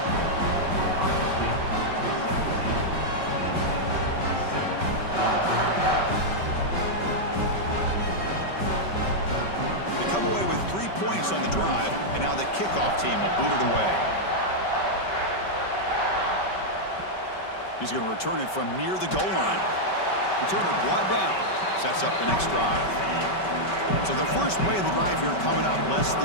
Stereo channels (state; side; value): late; right; 5.2 ms